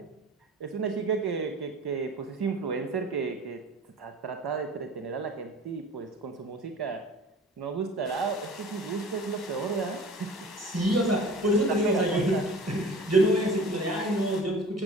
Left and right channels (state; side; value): normal; both; correlation 0.43